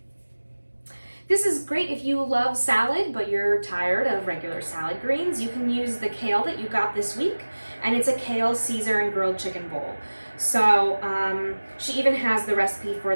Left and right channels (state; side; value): inverted; both; correlation -1.00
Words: This is great if you love salad, but you're tired of regular salad greens. You can use the kale that you got this week, and it's a kale Caesar and grilled chicken bowl. So she even has the recipe for